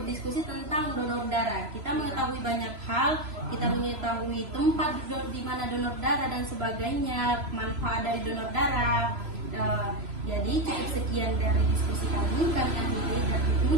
tentang donor darah. Kita mengetahui banyak hal, kita mengetahui tempat di mana donor darah dan sebagainya, manfaat dari donor darah. Jadi cukup sekian dari diskusi kami akhiri dan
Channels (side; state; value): left; late; 3.0 ms